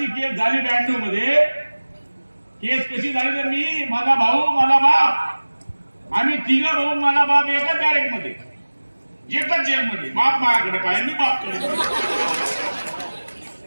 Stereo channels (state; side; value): inverted; both; correlation -1.00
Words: केस झाली 92 मध्ये। केस कशी झाली तर मी, माझा भाऊ, माझा बाप, आम्ही 3 भाऊ, माझा बाप एकाच बॅरेक मध्ये, एकच जेल मध्ये। बाप माझ्याकडे पाहिजे, मी बापकडे।